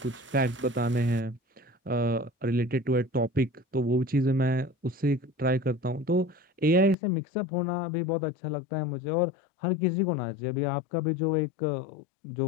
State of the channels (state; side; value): drops out; right; at 7.0 s